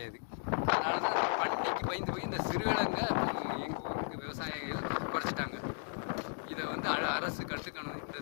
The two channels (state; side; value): silent; right; digital silence